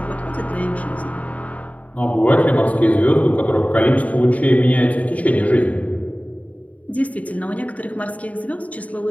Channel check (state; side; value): late; right; 0.069 ms